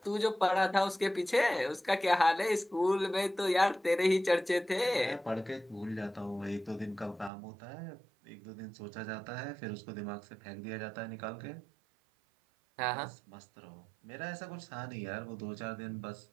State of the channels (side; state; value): left; drops out; at 7.3 s